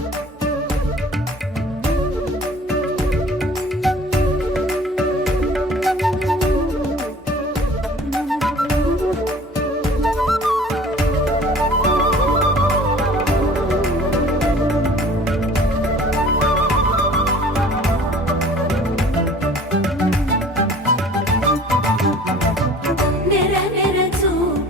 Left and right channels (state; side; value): normal; both; correlation 0.48